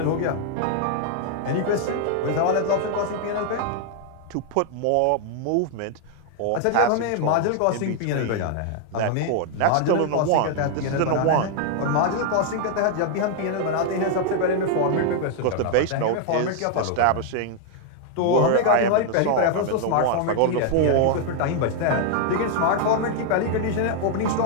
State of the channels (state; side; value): different; both; correlation 0.00